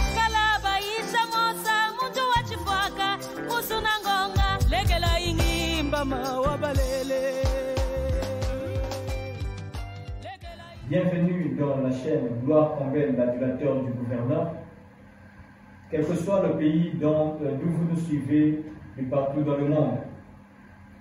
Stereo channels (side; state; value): both; identical; correlation 1.00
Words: kala baisha mosa muntu wachifwaka musuna ngonga legela ingimba mawabalele. Bienvenue dans la chaîne Gloire Combel, l'adulateur du gouverneur. Quel que soit le pays d'où vous nous suivez et partout dans le monde.